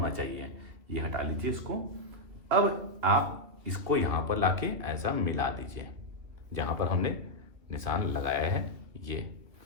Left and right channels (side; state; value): left; late; 2.7 ms